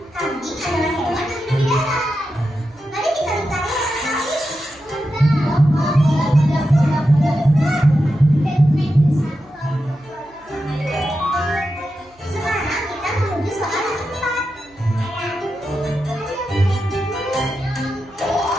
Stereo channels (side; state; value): right; noise; hum, 30 dB below the sound